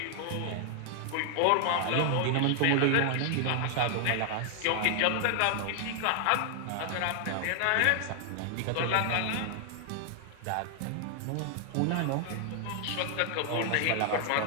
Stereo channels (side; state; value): both; different; correlation 0.00